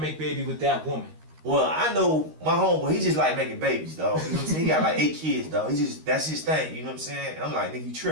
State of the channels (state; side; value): late; left; 13 ms